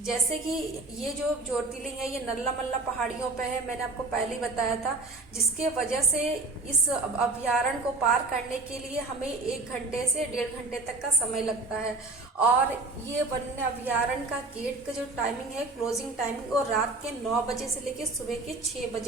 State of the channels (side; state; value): left; quieter; 3.4 dB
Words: कि ये जो ज्योतिर्लिंग है, ये नल्ला मल्ला पहाड़ियों पे है, मैंने आपको पहले ही बताया था, जिसके वजह से इस अभयारण्य को पार करने के लिए हमें 1 घंटे से 1.5 घंटे तक का समय लगता है। और ये वन्य अभयारण्य का गेट का जो टाइमिंग है, क्लोजिंग टाइमिंग, और रात के 9 बजे से लेकर सुबह के 6